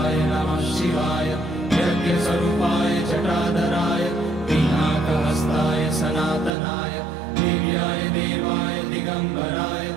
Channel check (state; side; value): drops out; left; at 6.5 s